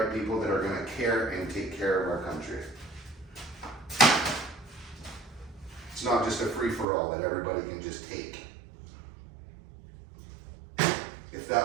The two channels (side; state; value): left; drops out; at 6.9 s